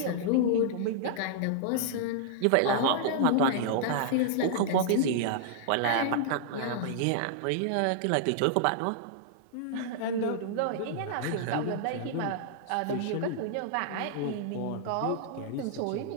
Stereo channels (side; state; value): both; different; correlation -0.01